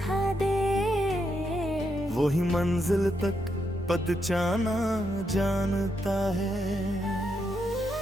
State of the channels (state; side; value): normal; both; correlation 0.80